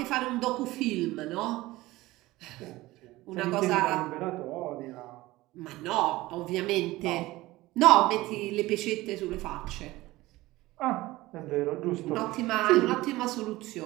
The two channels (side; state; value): left; quieter; 18.6 dB